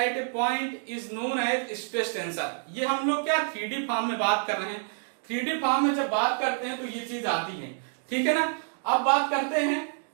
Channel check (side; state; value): left; silent; digital silence